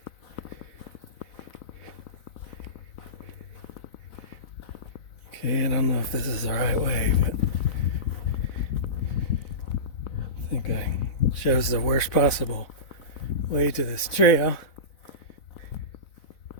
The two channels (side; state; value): right; late; 4.0 ms